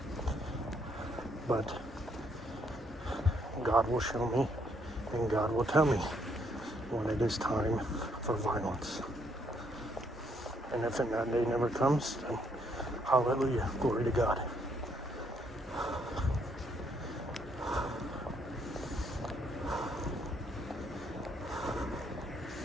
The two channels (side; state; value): both; normal; correlation 0.71